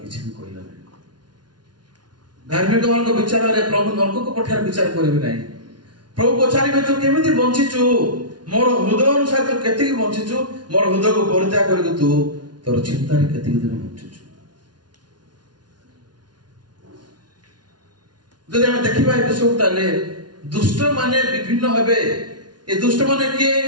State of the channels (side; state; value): left; late; 0.70 ms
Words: କିଛି ବି କହିଲା ନାହିଁ। ଧାର୍ମିକ ମାନଙ୍କ ବିଚାରରେ ପ୍ରଭୁ ନର୍କକୁ ପଠାର ବିଚାର କରିବେ ନାହିଁ। ପ୍ରଭୁ ପଚାରିବେ ତୁ କେମିତି ବଞ୍ଚିଛୁ, ମୋର ହୃଦୟ ଅନୁସାରେ ତୁ କେତିକି ବଞ୍ଚିଛୁ, ମୋର ହୃଦୟକୁ ପରିତ୍ୟାଗ କରିକି ତୁ ତୋର ଚିନ୍ତାରେ କେତିକି ଦିନ ବଞ୍ଚିଛୁ। ଯଦି ଆମେ ଦେଖିବା ଏ ବିଷୟକୁ, ତାହେଲେ ଦୁଷ୍ଟ ମାନେ ବିଭିନ୍ନ ହେବେ। ଏ ଦୁଷ୍ଟ ମାନେ କିଏ?